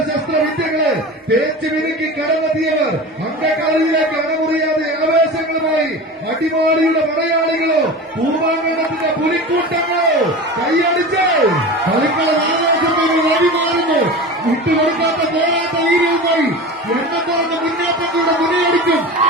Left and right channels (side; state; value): both; normal; correlation 0.31